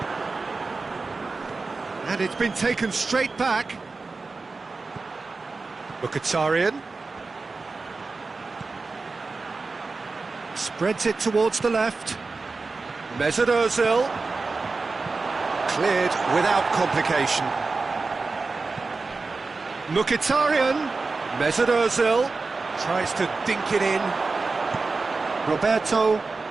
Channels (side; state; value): left; quieter; 3.9 dB